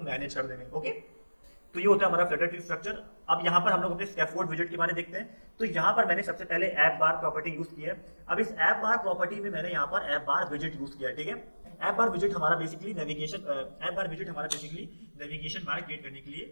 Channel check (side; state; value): both; inverted; correlation -1.00